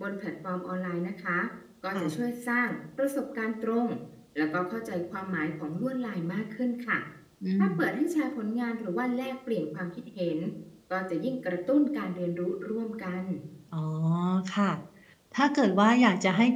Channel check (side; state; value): both; identical; correlation 1.00